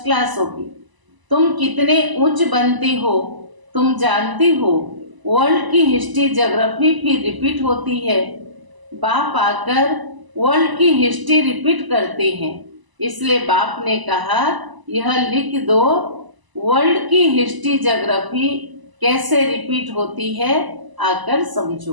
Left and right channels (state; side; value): late; left; 1.0 ms